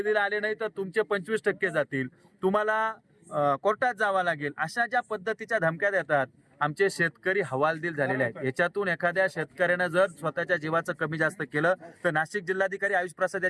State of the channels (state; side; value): identical; both; correlation 1.00